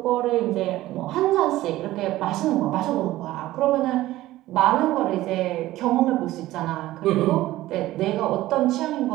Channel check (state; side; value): quieter; left; 16.1 dB